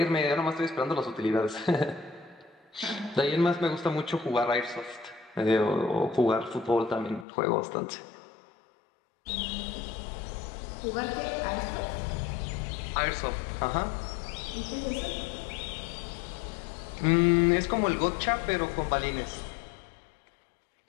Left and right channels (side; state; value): right; drops out; at 7.2 s